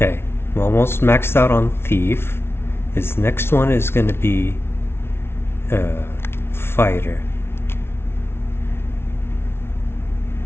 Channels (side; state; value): right; late; 0.12 ms